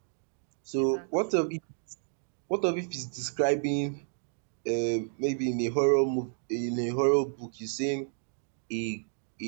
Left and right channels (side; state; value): left; silent; digital silence